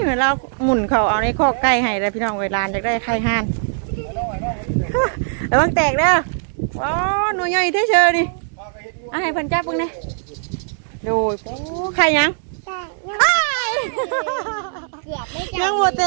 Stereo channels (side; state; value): left; silent; digital silence